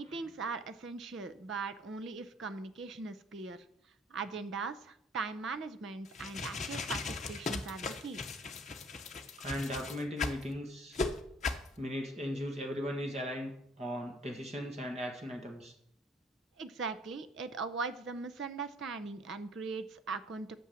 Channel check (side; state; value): both; normal; correlation 0.57